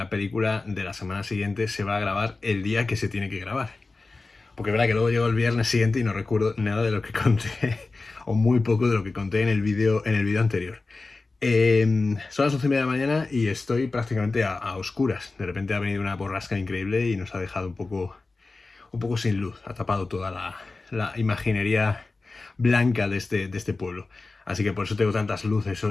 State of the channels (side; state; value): right; quieter; 3.6 dB